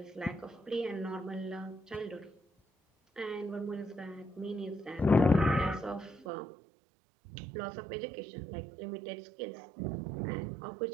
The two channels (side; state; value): left; drops out; at 6.2 s